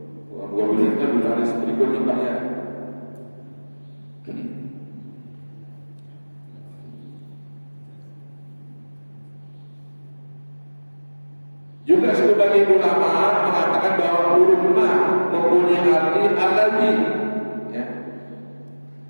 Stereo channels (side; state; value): both; inverted; correlation -1.00